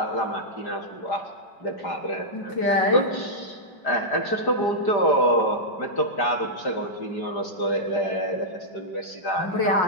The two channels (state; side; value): late; right; 5.0 ms